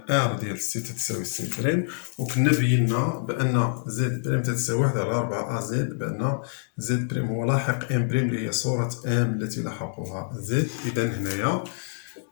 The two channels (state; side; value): silent; right; digital silence